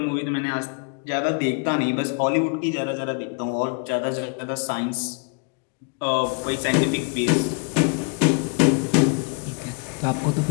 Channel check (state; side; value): quieter; right; 36.9 dB